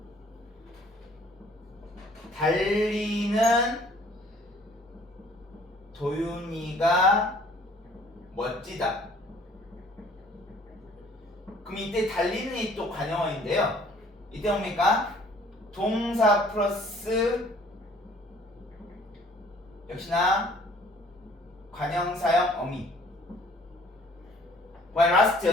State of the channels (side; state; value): both; normal; correlation 0.56